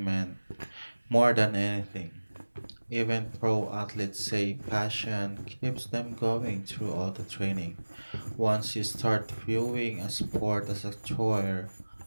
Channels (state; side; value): inverted; both; correlation -1.00